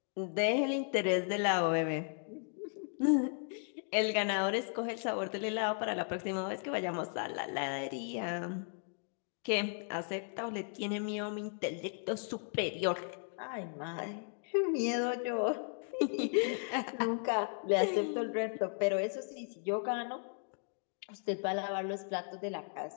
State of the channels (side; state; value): right; silent; 54 dB below the other